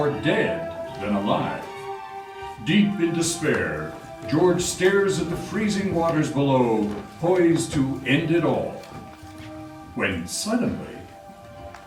dead than alive. Deep in despair, George stares at the freezing waters below, poised to end it all. When suddenly...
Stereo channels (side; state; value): both; identical; correlation 1.00